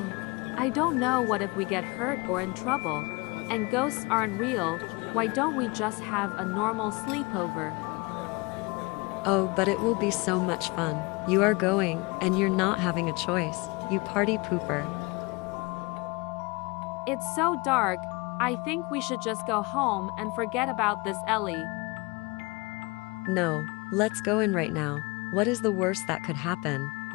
don't know what if we get hurt or in trouble. And ghosts aren't real, why don't we just have a normal sleepover? Oh, but it will be so much fun. You are going, and you're not having a choice. You party pooper. It's so dark, I think we should just go home and forget about this, Ellie. No, let's go in right now. What is the worst that could happen?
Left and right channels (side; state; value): right; quieter; 26.1 dB